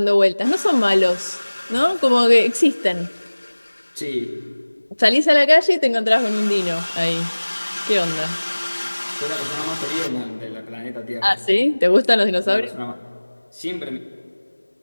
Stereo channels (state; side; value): inverted; both; correlation -1.00